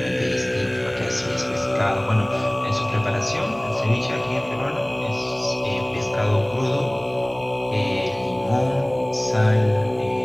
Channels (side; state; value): left; noise; hum, 27 dB below the sound